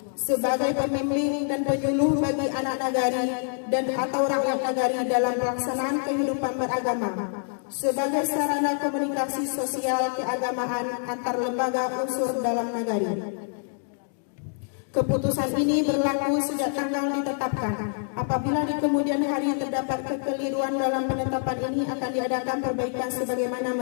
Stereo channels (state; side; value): silent; right; 60 dB below the other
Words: sebagai pembimbing dan penyuluh bagi anak nagari dan atau rakyat nagari dalam pelaksanaan kehidupan beragama sebagai sarana komunikasi sosial keagamaan antar lembaga unsur dalam nagari. Keputusan ini berlaku sejak tanggal ditetapkan. Apabila di kemudian hari terdapat kekeliruan dalam penetapan ini akan diadakan perbaikan sebagaimana